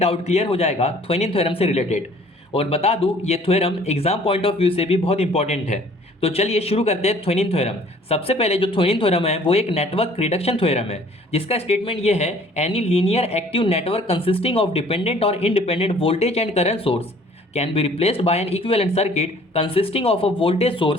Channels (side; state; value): both; normal; correlation 0.54